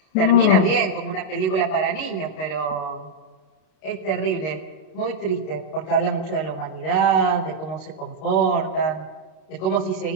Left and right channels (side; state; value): right; late; 32 ms